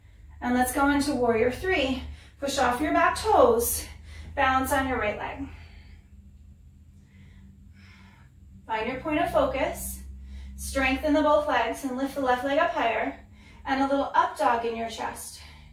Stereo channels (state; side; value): identical; both; correlation 1.00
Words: And let's go into warrior 3. Push off your back toes. Balance on your right leg. Find your point of focus. Strengthen the both legs and lift the left leg up higher. And a little up dog in your chest.